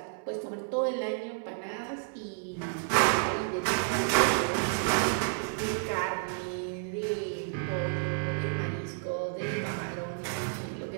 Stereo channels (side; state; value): left; silent; 57 dB below the other